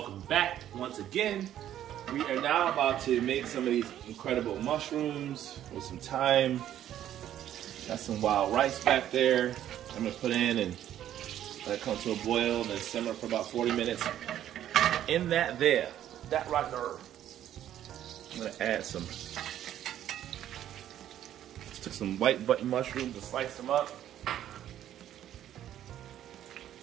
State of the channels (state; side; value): quieter; left; 11.5 dB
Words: back once again. We are now about to make some of these incredible mushrooms with some thyme. Got some wild rice back there. I'm gonna put in and let it come to a boil and then simmer for about 40 minutes. In that right there, I'm gonna add took some white button mushrooms and slice them up.